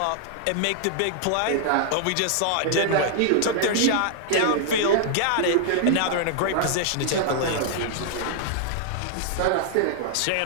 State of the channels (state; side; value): different; both; correlation -0.01